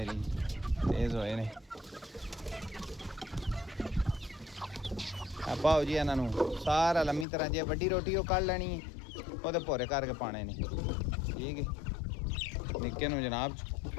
तेज़ होए ने। पाओ जी इन्हां नूं सारा लम्मी तरह जे वड्डी रोटी वो कढ़ लैनी है, वो भोरे करके पाने ने। ठीक है, निक्के नूं जनाब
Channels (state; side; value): drops out; right; at 7.2 s